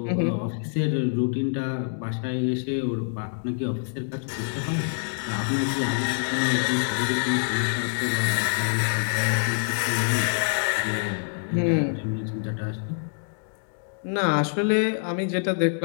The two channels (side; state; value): right; silent; digital silence